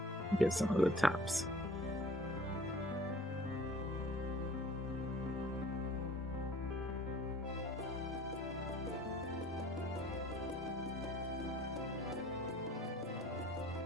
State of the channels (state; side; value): normal; both; correlation 0.50